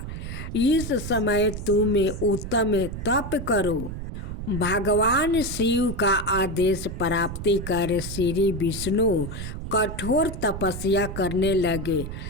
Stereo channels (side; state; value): right; noise; rumble, 7 dB below the sound